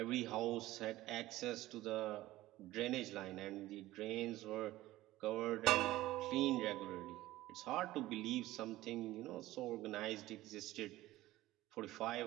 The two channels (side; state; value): left; quieter; 16.6 dB